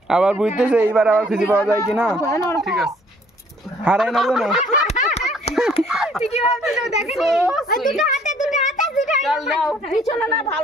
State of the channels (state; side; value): normal; both; correlation 0.60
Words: আবার বুঝতেছে এইবার আবার খুঁজে পাওয়া যায় কিনা ঠিক আছে হারাই না জানো ঠিকই ভাবছিল দেখেন দুটো হাতে চল নাও পিছনে না